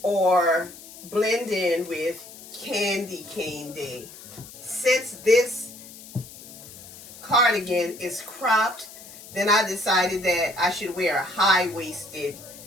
or blend in with Candy Cane Day. Since this cardigan is cropped, then I decided that I should wear a high-waisted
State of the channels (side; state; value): left; noise; hiss, 17 dB below the sound